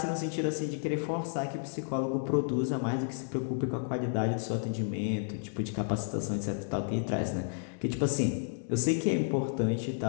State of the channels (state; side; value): silent; right; digital silence